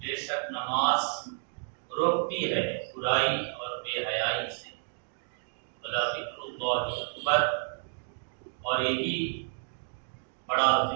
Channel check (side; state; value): left; silent; digital silence